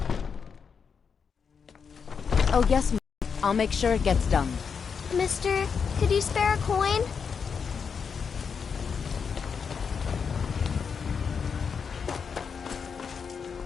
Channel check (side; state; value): right; quieter; 6.2 dB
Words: Oh, yes, Mom. I'll make sure it gets done. Mister, could you spare a coin?